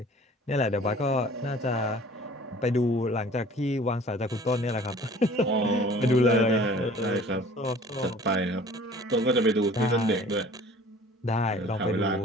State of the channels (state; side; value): normal; both; correlation 0.48